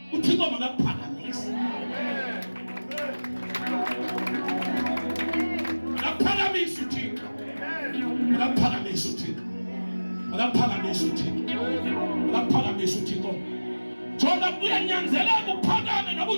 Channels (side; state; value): both; inverted; correlation -1.00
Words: uThixo makaphakamise. Makaphakamise uThixo. Makaphakamise uThixo. Makaphakamise uThixo. Makaphakamise uThixo. Jonga kuyanyanzeleka uphakame noba